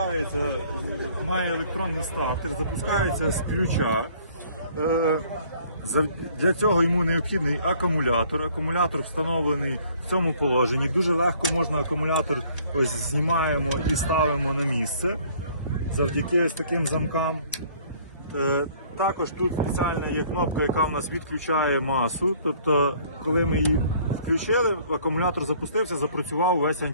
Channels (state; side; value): inverted; both; correlation -0.58